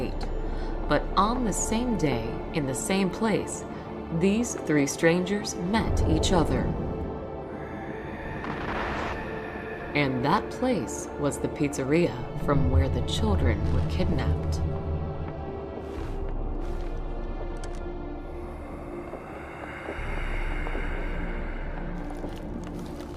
But on the same day, in the same place, these 3 strangers met each other. And that place was the pizzeria from where the children were kidnapped.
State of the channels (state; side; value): identical; both; correlation 1.00